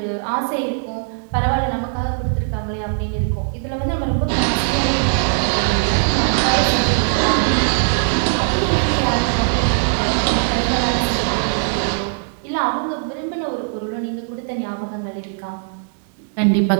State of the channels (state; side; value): silent; left; 66 dB below the other